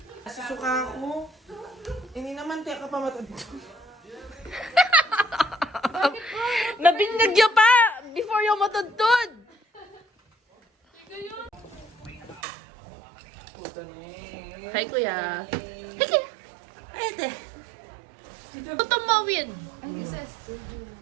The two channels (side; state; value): left; drops out; at 12.4 s